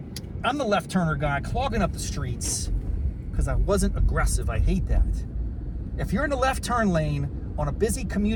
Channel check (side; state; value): both; identical; correlation 1.00